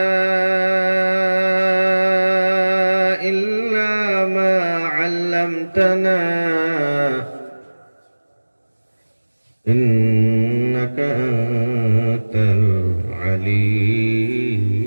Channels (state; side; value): inverted; both; correlation -1.00